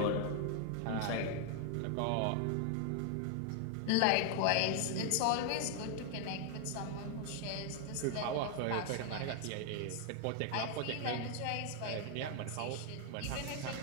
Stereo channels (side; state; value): both; different; correlation 0.00